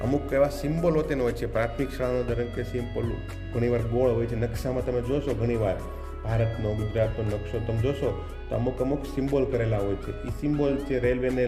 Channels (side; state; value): both; identical; correlation 1.00